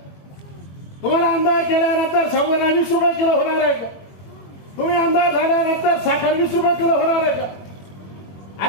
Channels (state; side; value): late; right; 21 ms